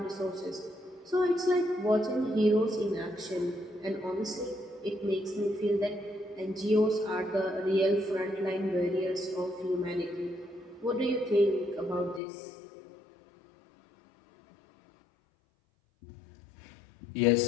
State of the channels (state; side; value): drops out; right; at 12.2 s